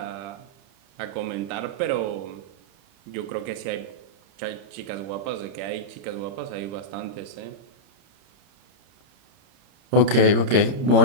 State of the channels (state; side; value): late; left; 31 ms